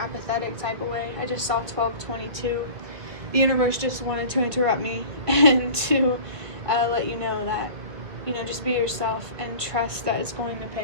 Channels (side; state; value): left; late; 2.0 ms